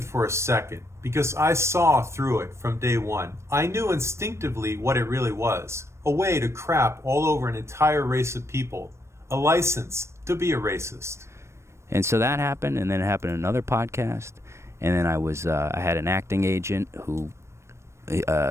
for a second, because I saw through it from day one. I knew instinctively what it really was, a way to crap all over an entire race of people, a license to be a racist. And so that happened, and then it happened in another podcast, and then I had an acting agent who,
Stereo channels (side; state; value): left; late; 0.13 ms